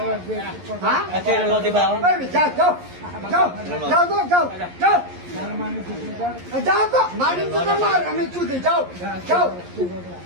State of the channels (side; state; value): left; late; 11 ms